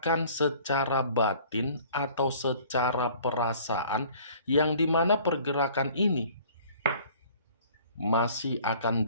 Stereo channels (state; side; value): inverted; both; correlation -0.51